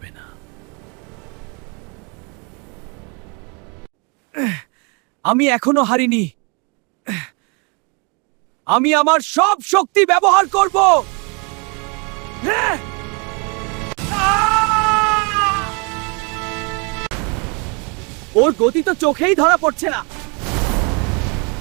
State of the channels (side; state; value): left; quieter; 33.1 dB